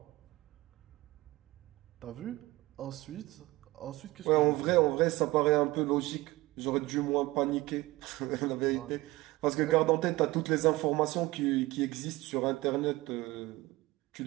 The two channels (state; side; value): quieter; left; 19.7 dB